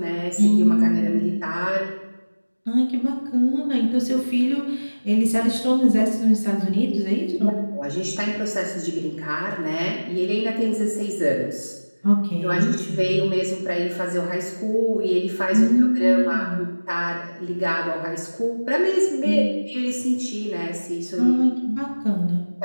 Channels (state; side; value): inverted; both; correlation -1.00